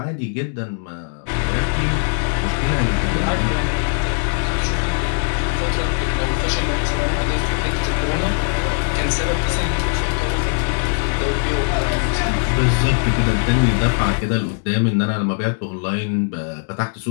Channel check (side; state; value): right; silent; digital silence